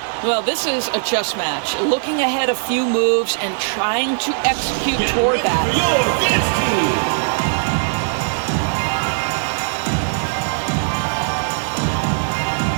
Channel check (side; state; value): left; silent; digital silence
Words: Well, this is a chess match. Looking ahead a few moves and trying to execute toward that.